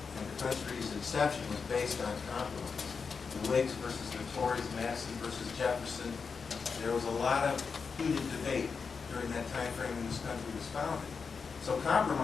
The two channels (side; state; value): right; quieter; 5.4 dB